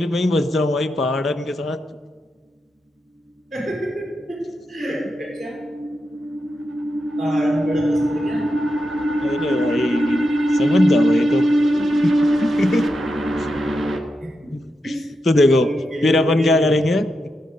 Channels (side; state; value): both; normal; correlation 0.86